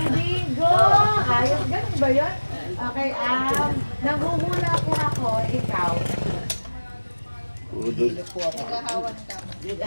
bigo! Ayos, ganun ba yun? Okay, nanghuhula po ako. Ikaw. Udol. Naghahawan ka.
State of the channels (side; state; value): both; inverted; correlation -1.00